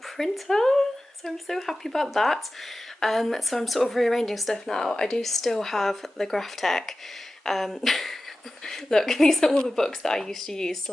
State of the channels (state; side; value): normal; both; correlation 0.95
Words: So I'm so happy about that. So I'm sort of rearranging stuff now. I do still have the Graphtec. Look, these are all the books that I used to use to